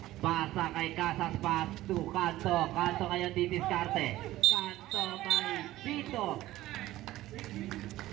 Pasa kay Casas, pass to Kanto. Kanto ngayon ditiskarte. Kanto kay Pito.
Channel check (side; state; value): left; quieter; 15.8 dB